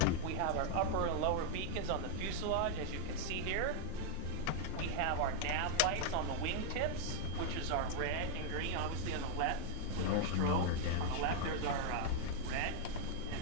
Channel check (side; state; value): both; different; correlation 0.00